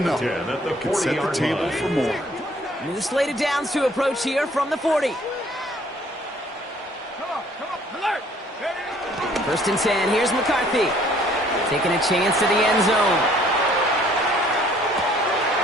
it can set the table for more. New slated downs to approach here from the 40. Come on. Alert. Ready. 1st and 10. Here's McCarthy. Taking a chance to the end zone.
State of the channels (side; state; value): both; normal; correlation 0.59